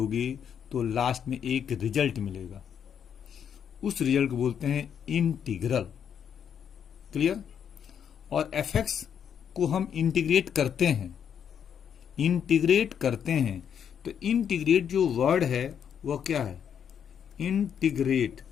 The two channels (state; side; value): quieter; right; 8.2 dB